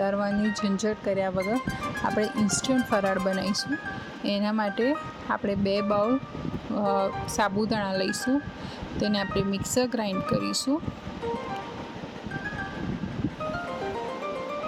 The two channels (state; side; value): identical; both; correlation 1.00